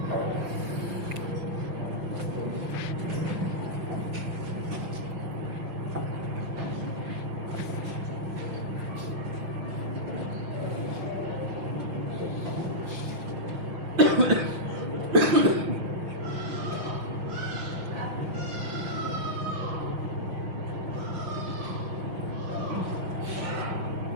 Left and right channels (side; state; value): left; late; 5.7 ms